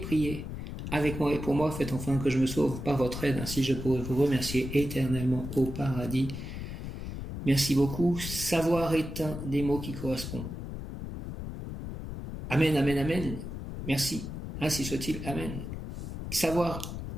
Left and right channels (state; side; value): noise; left; rumble, 7 dB below the sound